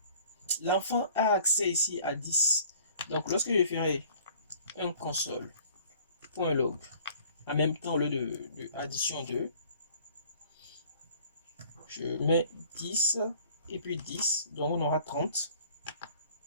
l'enfant a accès ici à 10. Donc lorsque je ferai un console.log, en même temps au lieu de addition 2, je mets 10 et puis 10, donc on aura 30.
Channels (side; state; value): both; inverted; correlation -0.53